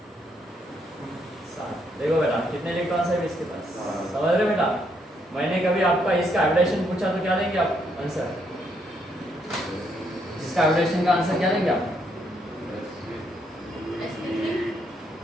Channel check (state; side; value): normal; both; correlation 0.74